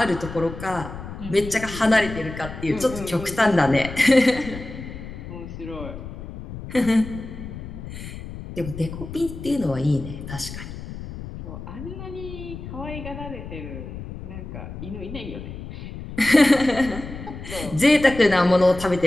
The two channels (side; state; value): left; noise; rumble, 11 dB below the sound